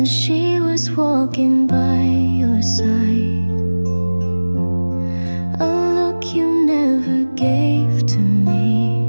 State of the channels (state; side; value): inverted; both; correlation -1.00